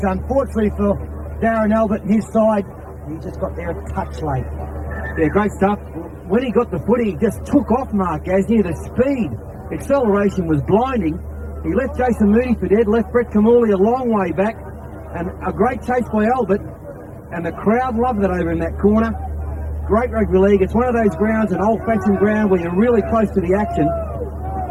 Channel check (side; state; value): both; identical; correlation 1.00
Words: Unfortunately for Darren Albert and his side, he just got there a touch late. Yeah, great stuff. When he got the footy, he just took off Mark Gasnier. The speed, acceleration was blinding. He left Jason Mooney for dead, left Brett Kamali a long way back, and a great chase by Albert, and the crowd loved it over in that corner. Great rugby league. It's one of those grounds, an old-fashioned ground where you're really close to the action,